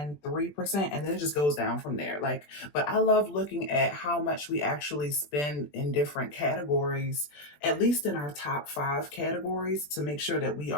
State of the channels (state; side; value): late; right; 20 ms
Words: and then it just goes down from there. But I love looking at how much we actually spend in different categories, at least in our top 5 categories, to make sure that we